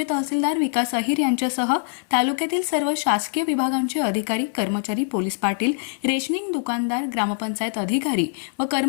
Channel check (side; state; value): right; silent; 59 dB below the other